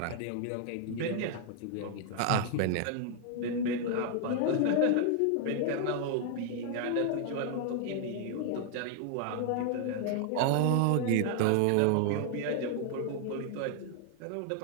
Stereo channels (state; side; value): different; both; correlation 0.00